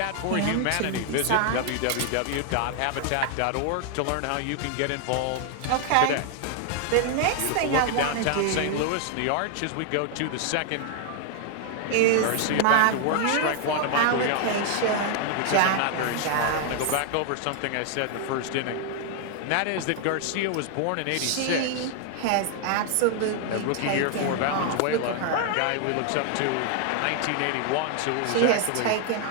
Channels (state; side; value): different; both; correlation 0.00